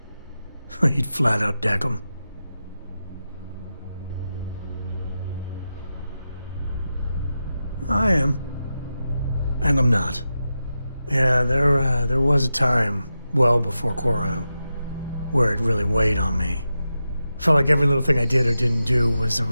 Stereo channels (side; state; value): both; inverted; correlation -0.91